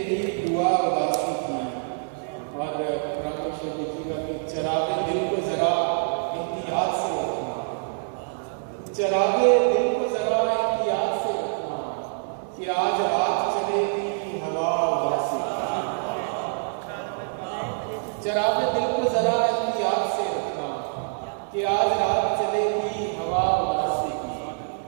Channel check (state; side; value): silent; left; digital silence